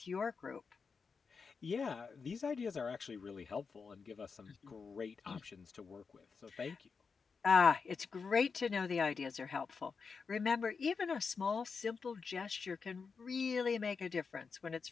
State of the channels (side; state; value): right; quieter; 5.3 dB